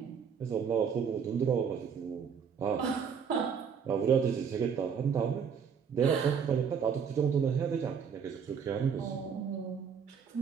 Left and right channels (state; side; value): quieter; left; 6.8 dB